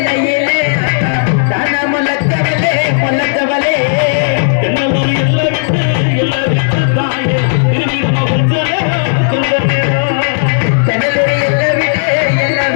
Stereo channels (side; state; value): right; silent; digital silence